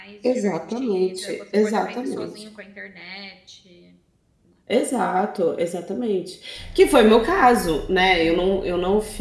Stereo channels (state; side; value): identical; both; correlation 1.00